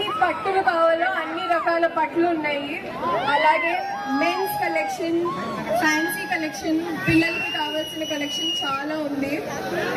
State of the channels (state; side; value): identical; both; correlation 1.00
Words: పట్టులు కావాలో అన్ని రకాల పట్లు ఉన్నాయి. అలాగే మెన్స్ కలెక్షన్, ఫ్యాన్సీ కలెక్షన్, పిల్లలకి కావాల్సిన కలెక్షన్ చాలా ఉంది.